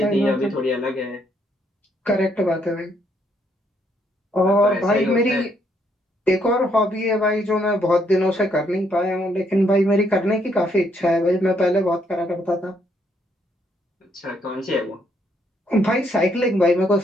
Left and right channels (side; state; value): both; normal; correlation 0.72